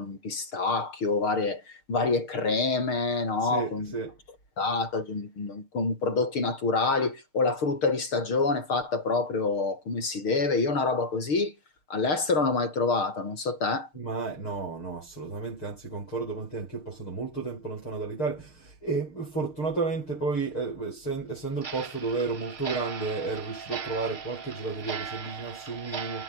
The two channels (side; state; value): right; late; 6.5 ms